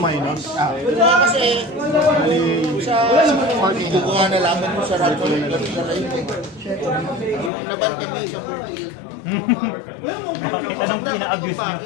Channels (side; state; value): right; drops out; at 7.5 s